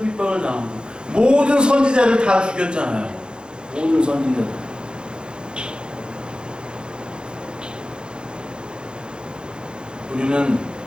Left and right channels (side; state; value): left; late; 0.049 ms